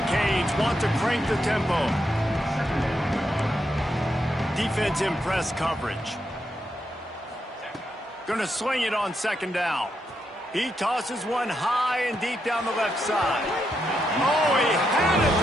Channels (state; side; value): normal; both; correlation 0.81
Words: Canes want to crank the tempo. Defense in press coverage. Going to swing it on second down. He tosses one high and deep down the left side. Oh, he had it.